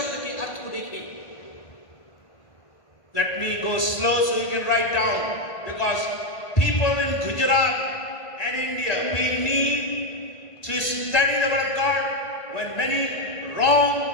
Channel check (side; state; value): right; late; 1.5 ms